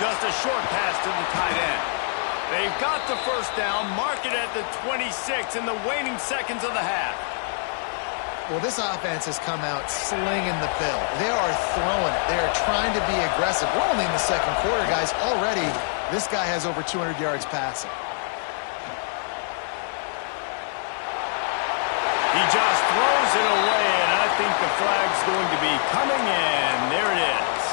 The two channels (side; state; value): right; silent; 58 dB below the other